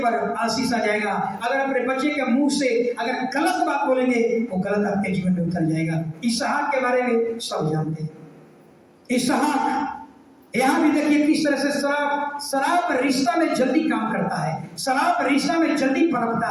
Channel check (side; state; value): both; identical; correlation 1.00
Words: आशीष आ जाएगा। अगर अपने बच्चे के मुंह से अगर गलत बात बोलेंगे, वो गलत आपके जीवन में उतर जाएगा। इसहाक के बारे में सब जानते हैं। इसहाक, यहाँ भी देखिए किस तरह से शराब रिश्ता में जल्दी काम करता है, शराब रिश्ता में जल्दी पनपता